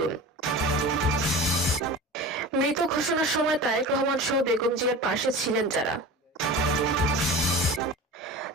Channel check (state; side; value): normal; both; correlation 0.34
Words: মৃত ঘোষণার সময় তারেক রহমান সহ বেগম জিয়ার পাশে ছিলেন যারা।